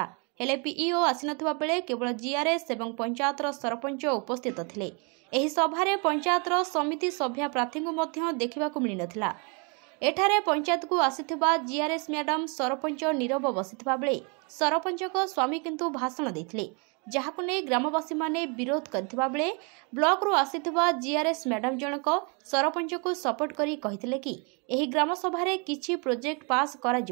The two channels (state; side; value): quieter; left; 33.9 dB